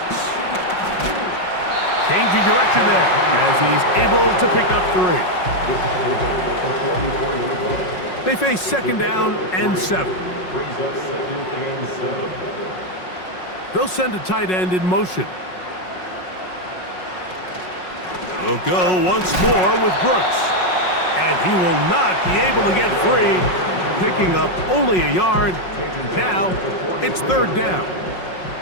Changing direction there as he's able to pick up 3. They face 2nd down and 7. They'll send a tight end in motion. We'll go once more with Brooks. And he will not be able to get free, picking up only a yard. Now it's 3rd down.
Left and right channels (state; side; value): late; right; 5.5 ms